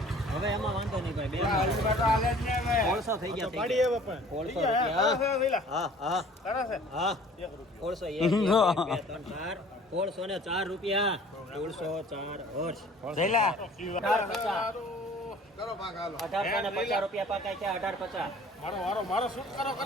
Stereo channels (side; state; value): both; normal; correlation 0.50